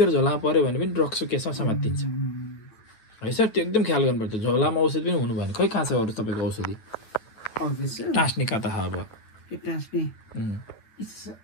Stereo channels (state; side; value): late; right; 9.1 ms